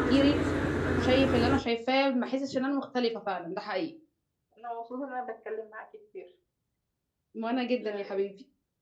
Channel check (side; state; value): both; identical; correlation 1.00